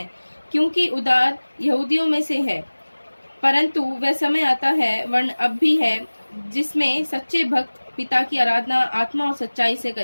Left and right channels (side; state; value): both; inverted; correlation -1.00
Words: क्योंकि उद्धार यहूदियों में से है। परंतु वह समय आता है, वर्ण अब भी है, जिसमें सच्चे भक्त पिता की आराधना आत्मा और सच्चाई से